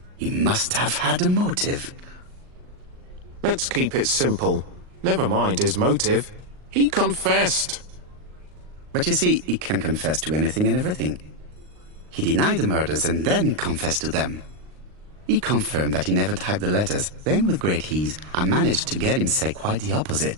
He must have had a motive. Let's keep it simple. Never mind his motive. He confessed. But you see, he can confess to anything and everything. He denied the murders and then he confessed to them. He confirmed that he never typed the letters. Then, with great ease, I managed to get him say quite the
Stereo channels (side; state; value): left; late; 39 ms